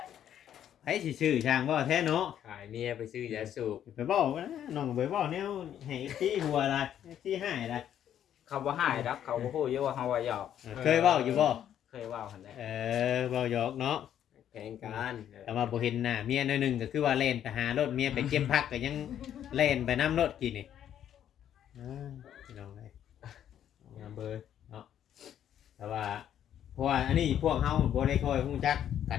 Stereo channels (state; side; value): quieter; right; 10.2 dB